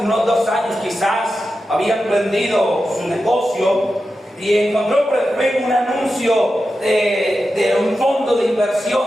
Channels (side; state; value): both; normal; correlation 0.91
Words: 2 años quizás había emprendido su negocio y encontró por el Facebook un anuncio de un fondo de inversión.